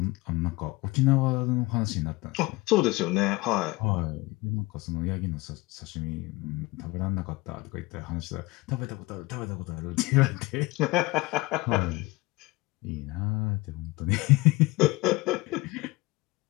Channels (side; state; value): right; quieter; 22.0 dB